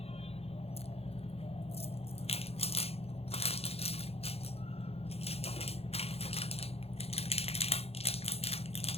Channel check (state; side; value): late; right; 0.29 ms